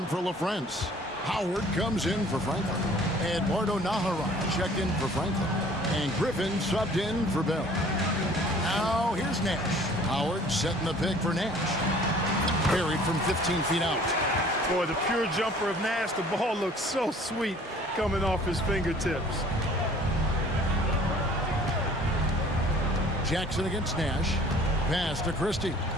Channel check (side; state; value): both; normal; correlation 0.52